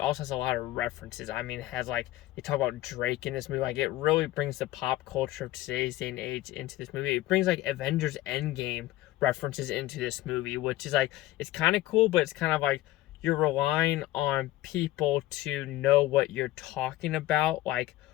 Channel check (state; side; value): quieter; right; 16.1 dB